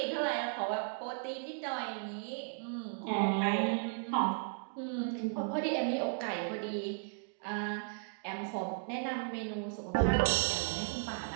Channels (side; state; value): left; silent; 54 dB below the other